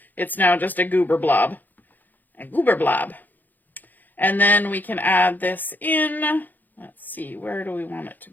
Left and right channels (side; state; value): right; late; 0.086 ms